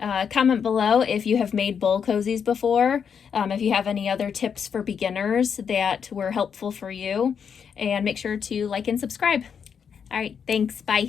Comment below if you have made bowl cozies before, if you have any other tips for beginners that were helpful for you, and make sure to like and subscribe. All right, thanks,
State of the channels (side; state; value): right; quieter; 7.1 dB